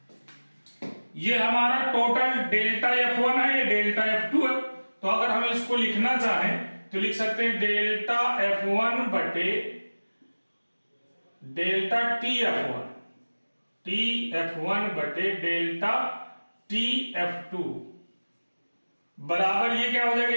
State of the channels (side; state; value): both; inverted; correlation -1.00